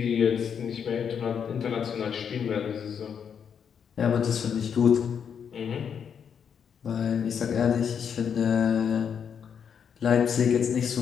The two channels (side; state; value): right; quieter; 7.4 dB